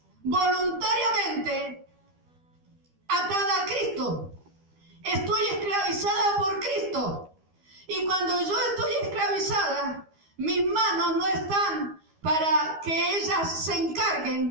voluntariamente, atada a Cristo. Estoy esclavizada por Cristo. Y cuando yo estoy esclavizada, mis manos no están para que ellas se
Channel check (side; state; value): left; late; 12 ms